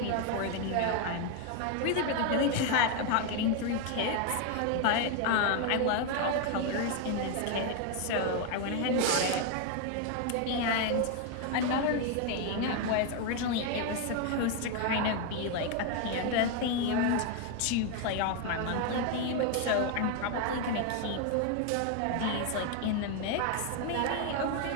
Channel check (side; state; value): both; different; correlation 0.01